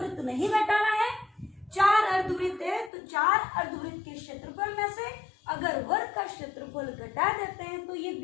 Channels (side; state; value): right; drops out; at 2.9 s